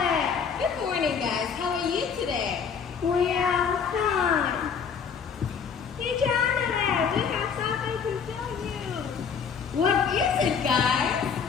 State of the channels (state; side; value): quieter; right; 6.6 dB